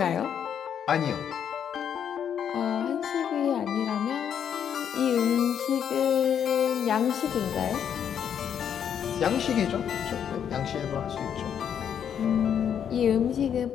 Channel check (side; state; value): right; quieter; 8.6 dB